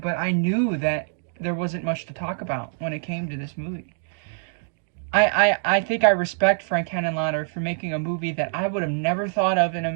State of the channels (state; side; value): silent; left; digital silence